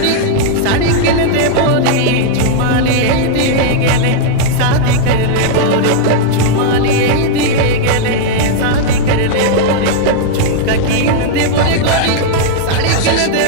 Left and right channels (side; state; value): both; different; correlation -0.01